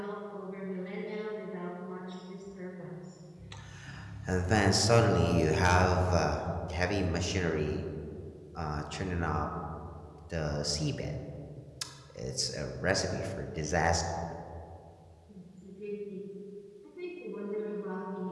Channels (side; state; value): both; identical; correlation 1.00